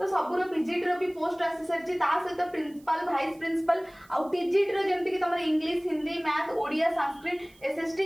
सबुर पीजीटी रो भी पोस्ट आसी सरछि। ता सहित प्रिंसिपल, वाइस प्रिंसिपल आ टीजीटी रो जेमति कि तमर English, Hindi, math, Odia, Sanskrit,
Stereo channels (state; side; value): noise; right; hiss, 29 dB below the sound